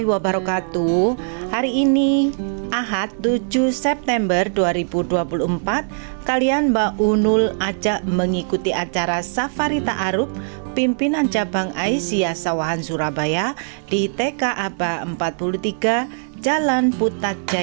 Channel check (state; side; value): silent; left; digital silence